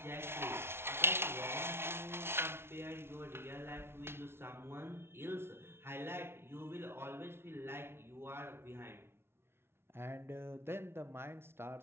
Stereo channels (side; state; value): left; late; 0.12 ms